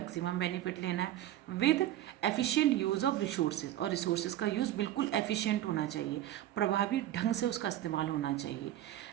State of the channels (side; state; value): left; quieter; 13.1 dB